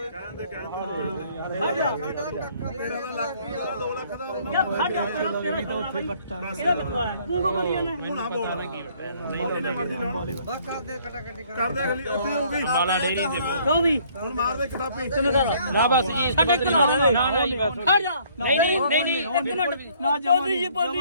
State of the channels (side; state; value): both; inverted; correlation -0.61